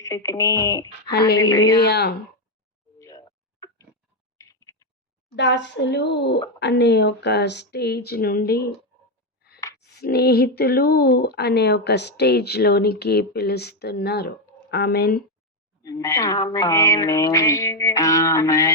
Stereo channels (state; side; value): normal; both; correlation 0.06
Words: తిని. హల్లెలూయా. దాసులు అనే ఒక స్టేజ్ నుండి స్నేహితులు అనే ఒక స్టేజ్ లోనికి పిలుస్తున్నారు. ఆమెన్.